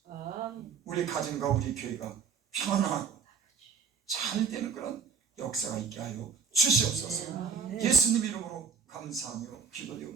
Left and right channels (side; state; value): left; quieter; 5.9 dB